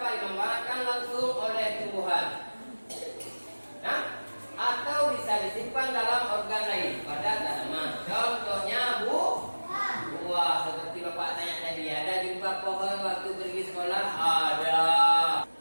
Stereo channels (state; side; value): inverted; both; correlation -1.00